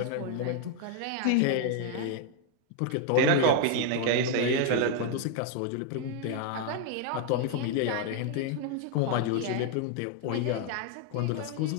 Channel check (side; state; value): both; different; correlation 0.00